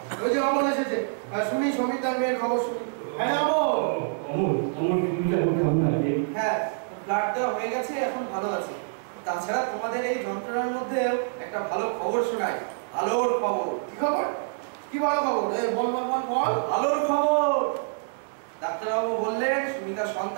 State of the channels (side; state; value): left; silent; digital silence